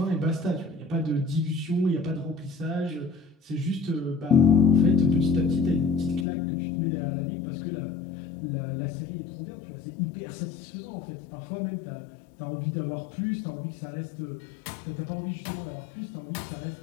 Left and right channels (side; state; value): right; drops out; at 6.2 s